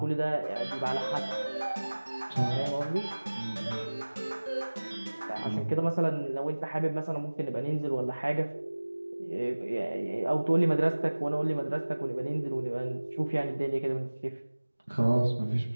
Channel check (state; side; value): inverted; both; correlation -1.00